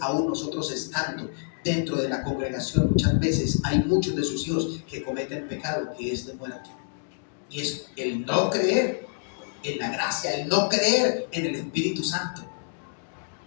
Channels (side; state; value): right; silent; digital silence